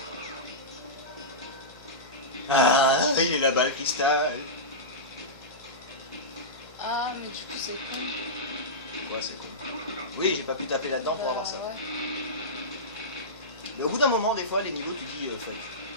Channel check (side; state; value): left; noise; hum, 23 dB below the sound